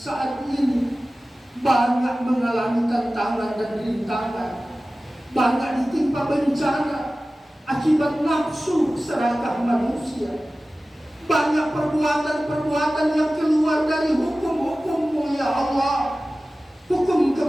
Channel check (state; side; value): normal; both; correlation 0.96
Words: ini banyak mengalami tantangan dan rintangan, banyak ditimpa bencana akibat nafsu serakah manusia, banyak perbuatan-perbuatan yang keluar dari hukum-hukum-Mu ya Allah, hukum